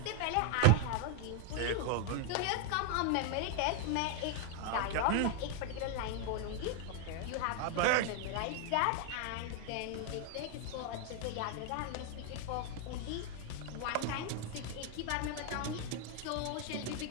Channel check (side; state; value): both; different; correlation 0.00